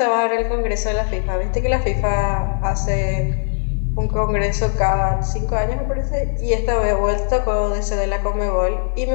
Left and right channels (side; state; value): right; silent; 63 dB below the other